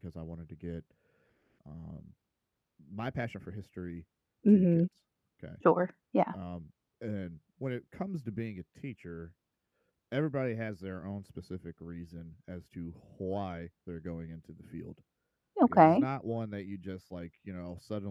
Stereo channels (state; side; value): identical; both; correlation 1.00